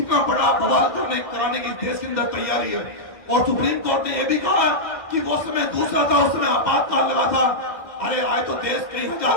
बड़ा बवाल कराने की देश के अंदर तैयारी है। और सुप्रीम कोर्ट ने यह भी कहा कि वो समय दूसरा था, उस समय आपातकाल लगा था। अरे आज तो देश कई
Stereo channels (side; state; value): right; late; 1.6 ms